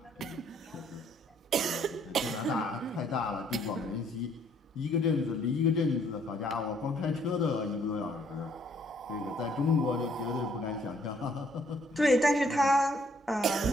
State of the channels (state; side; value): normal; both; correlation 0.65